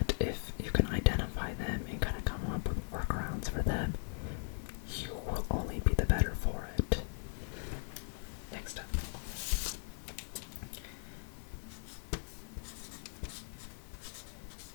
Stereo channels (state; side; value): silent; right; 52 dB below the other